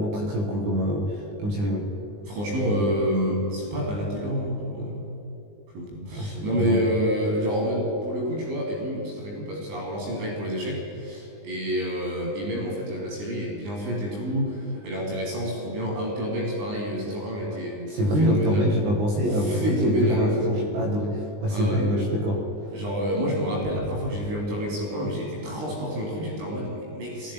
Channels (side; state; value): left; late; 20 ms